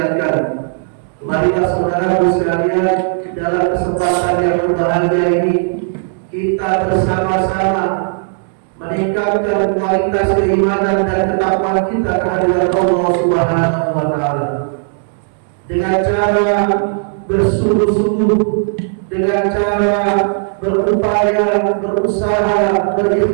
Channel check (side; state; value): left; silent; digital silence